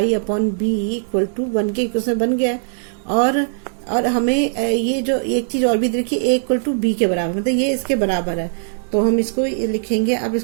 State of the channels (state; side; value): silent; left; 66 dB below the other